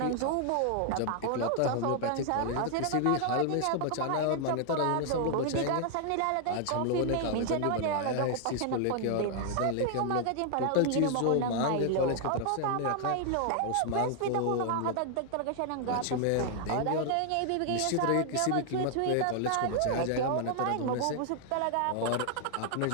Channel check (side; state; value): both; different; correlation 0.00